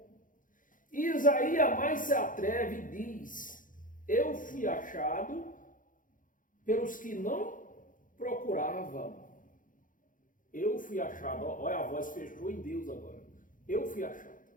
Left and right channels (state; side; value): late; right; 0.39 ms